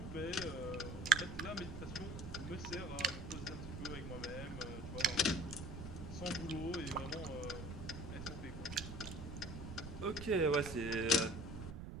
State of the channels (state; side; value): noise; right; rumble, 8 dB below the sound